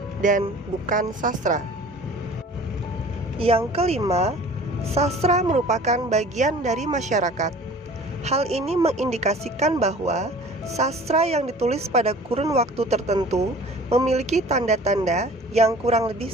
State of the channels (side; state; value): both; normal; correlation 0.46